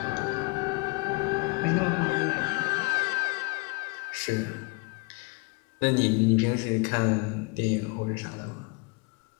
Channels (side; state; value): right; quieter; 27.2 dB